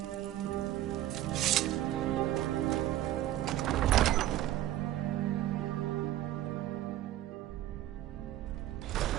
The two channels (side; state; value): left; quieter; 13.8 dB